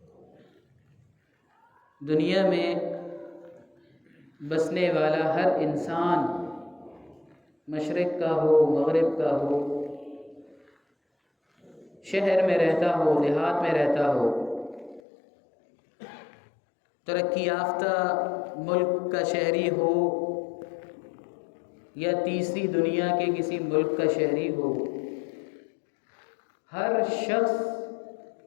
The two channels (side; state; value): right; drops out; at 15.0 s